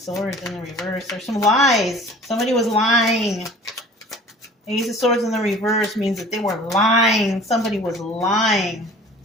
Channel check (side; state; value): both; normal; correlation 0.46